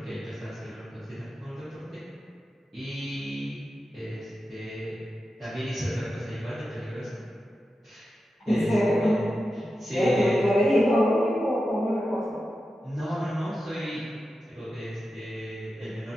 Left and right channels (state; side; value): normal; both; correlation 0.91